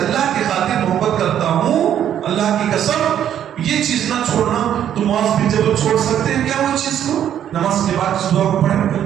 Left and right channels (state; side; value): quieter; left; 10.1 dB